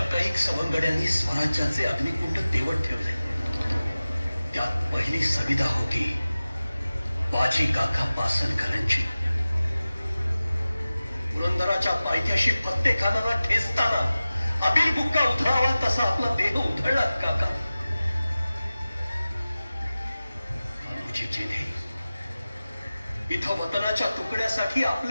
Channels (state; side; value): inverted; both; correlation -0.96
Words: कैक सवंगड्यांनी स्वराज्याचे अग्निकुंड तेवत ठेवले त्यात पहिली संविधा होती बाजी काका पासनकरांची पुरंदराच्या पायथ्याशी प्रत्येकाला ठेचताना अबिल बुक्का उधळावा तसा आपला देह उधळला काका जेथे इथं वतनाच्या तुकड्यासाठी